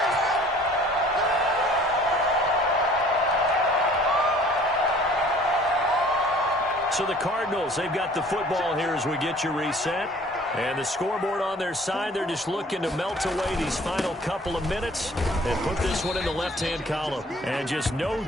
So the Cardinals, they've got the football here as we get you reset. And the scoreboard on their side, they're just looking to melt away these final couple of minutes and put this one in the left-hand column. And just no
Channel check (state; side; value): normal; both; correlation 0.52